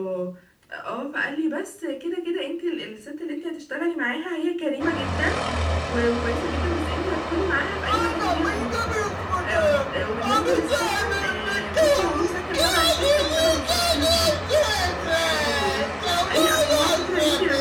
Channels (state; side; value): identical; both; correlation 1.00